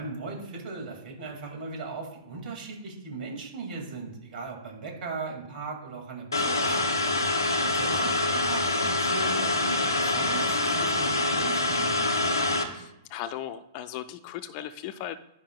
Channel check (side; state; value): both; inverted; correlation -0.48